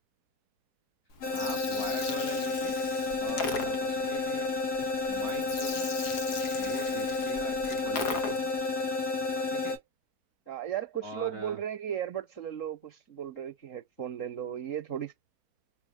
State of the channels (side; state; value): right; late; 4.8 ms